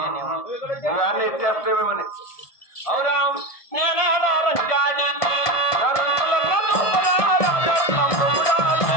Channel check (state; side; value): late; right; 1.7 ms